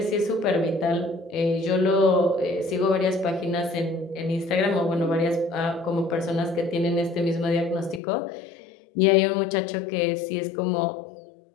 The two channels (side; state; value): right; drops out; at 8.0 s